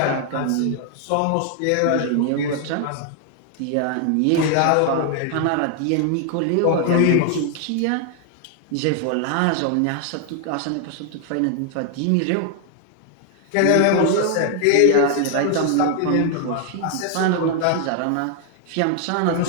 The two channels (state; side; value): different; both; correlation 0.00